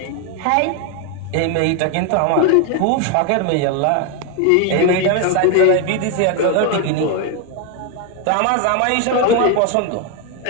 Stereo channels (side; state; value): both; different; correlation 0.01